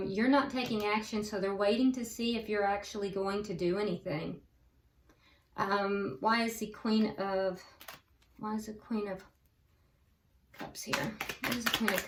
you're not taking action, so they're waiting to see if you're actually going to do anything. Why is the Queen of Cups here? What is the Queen of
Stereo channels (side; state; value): both; identical; correlation 1.00